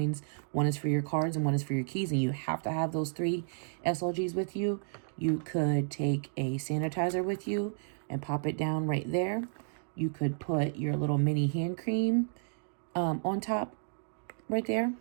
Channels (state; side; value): silent; left; digital silence